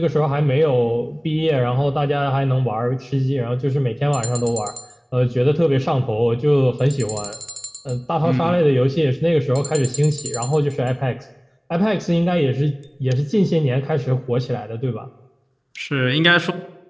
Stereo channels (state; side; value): identical; both; correlation 1.00